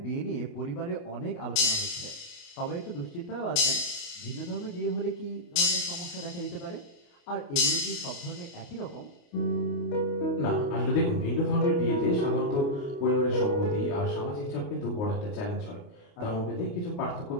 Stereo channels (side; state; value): right; late; 28 ms